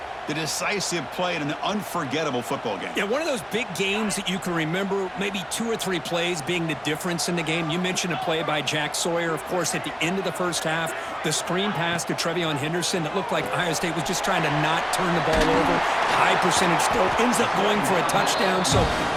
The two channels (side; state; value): both; identical; correlation 1.00